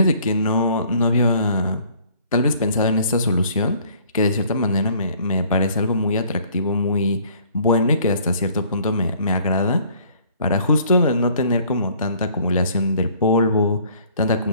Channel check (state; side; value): inverted; both; correlation -0.57